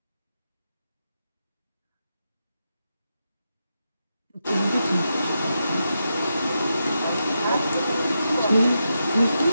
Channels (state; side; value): inverted; both; correlation -0.86